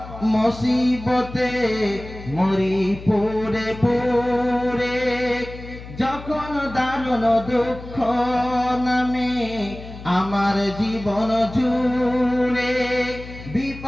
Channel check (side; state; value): left; noise; hum, 14 dB below the sound